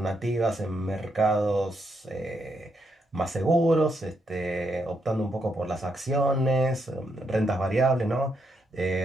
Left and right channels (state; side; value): normal; both; correlation 0.79